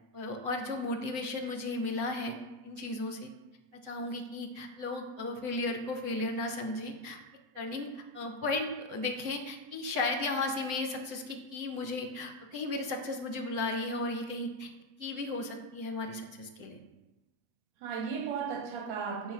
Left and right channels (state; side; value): late; left; 7.8 ms